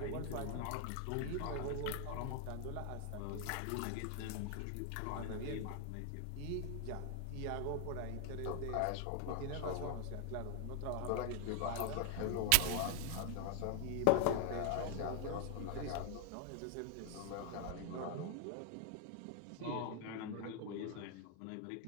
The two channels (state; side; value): different; both; correlation 0.00